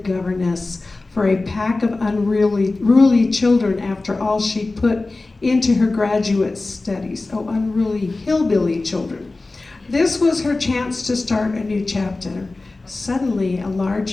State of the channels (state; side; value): quieter; right; 3.3 dB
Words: for a pack of unruly children after all she put into her graduate studies. Oh, unruly hillbilly children. This was her chance to start a new chapter. Suddenly, a